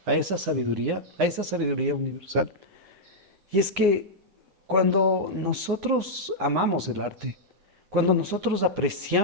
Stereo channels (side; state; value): left; late; 9.9 ms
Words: esa sabiduría universal. Y es que cuando nosotros amamos el arte, cuando nosotros